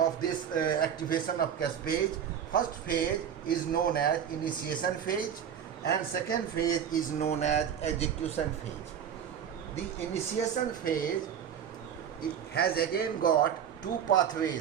this activation of caspase. First phase is known as initiation phase, and second phase is known as execution phase. The initiation phase, it has again got two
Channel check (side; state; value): left; quieter; 8.6 dB